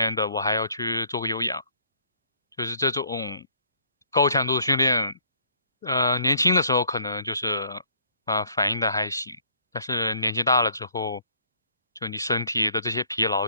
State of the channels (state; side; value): inverted; both; correlation -0.62